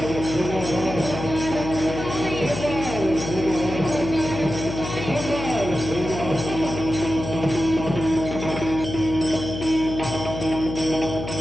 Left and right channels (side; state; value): left; noise; hum, 7 dB below the sound